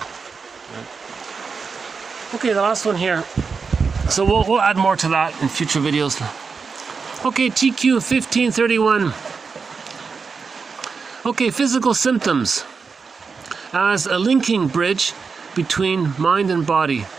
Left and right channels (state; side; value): quieter; left; 5.1 dB